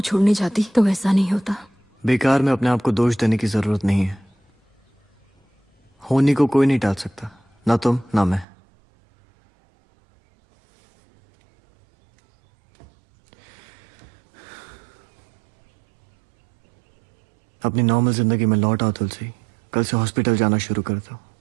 जाती तो ऐसा नहीं होता। बेकार में अपने आप को दोष देने की जरूरत नहीं है। होनी को कोई नहीं टाल सकता, ना तुम ना मैं। अपनी नॉर्मल जिंदगी में लौट आओ तुलसी। कल से हॉस्पिटल जाना शुरू कर दो।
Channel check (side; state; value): left; drops out; at 8.5 s